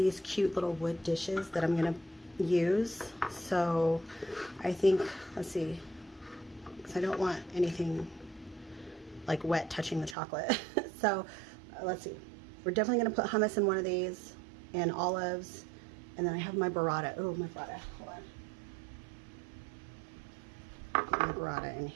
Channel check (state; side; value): drops out; left; at 10.2 s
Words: cute little wood dishes that I'm gonna use. So I think, let's see, because I don't want anything like wet touching the chocolate. So let's see. We're definitely gonna put hummus in one of these and olives. And then I have my burrata. Oh, my burrata. Hold on. Put my burrata in